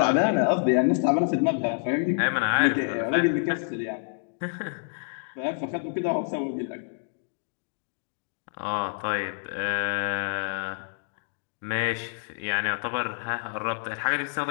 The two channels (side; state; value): right; silent; digital silence